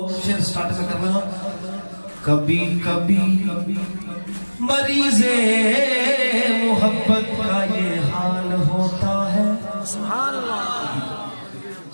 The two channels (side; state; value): both; inverted; correlation -1.00